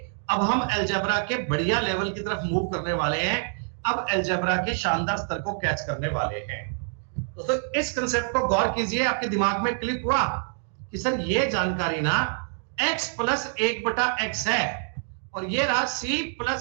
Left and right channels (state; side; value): silent; left; 61 dB below the other